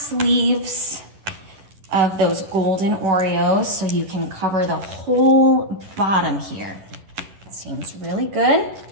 of those golden Oreos so you can cover the whole bottom here. That seems really good.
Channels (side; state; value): left; late; 11 ms